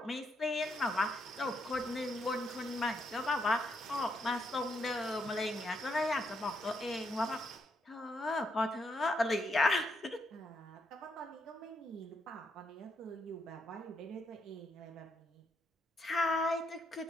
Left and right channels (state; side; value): normal; both; correlation 0.77